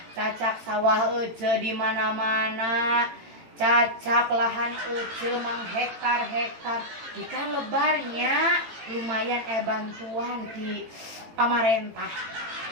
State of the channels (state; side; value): late; left; 18 ms